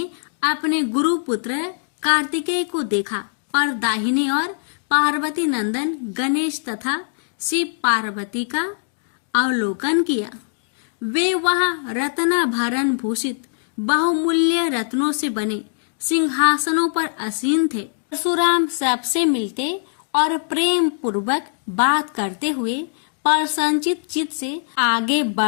अपने गुरु पुत्र कार्तिकेय को देखा और दाहिने ओर पार्वती नंदन गणेश तथा शिव पार्वती का अवलोकन किया। वे वहां रत्नाभरण भूषित बहुमूल्य रत्नों से बने सिंहासनों पर आसीन थे। परशुराम सबसे मिलते और प्रेम पूर्वक बात करते हुए प्रसन्नचित चित्त से आगे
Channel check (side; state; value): right; silent; digital silence